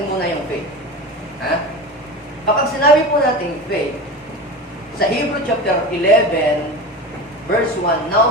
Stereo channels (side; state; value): both; normal; correlation 0.29